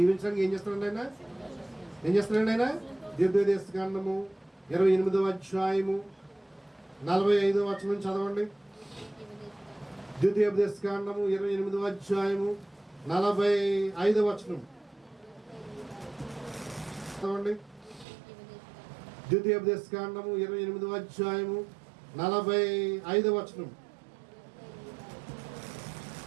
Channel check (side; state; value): left; drops out; at 18.1 s